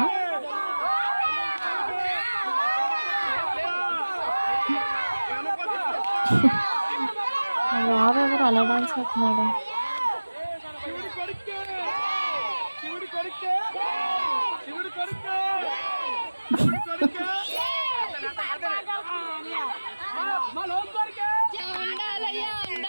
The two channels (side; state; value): both; inverted; correlation -1.00